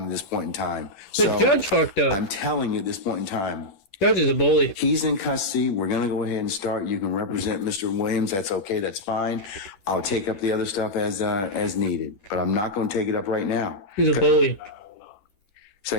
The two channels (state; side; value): late; right; 10 ms